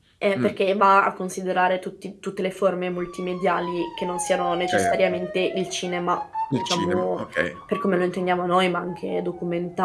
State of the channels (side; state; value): both; identical; correlation 1.00